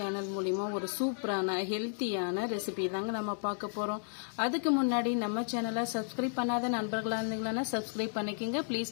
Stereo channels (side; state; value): right; silent; digital silence